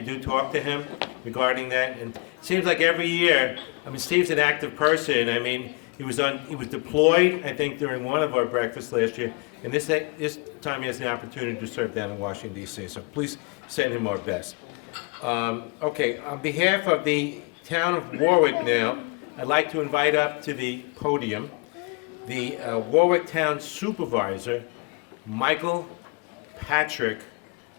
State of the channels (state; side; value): quieter; right; 32.2 dB